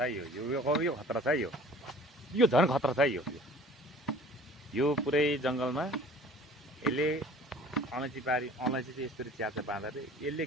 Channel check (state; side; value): normal; both; correlation 0.49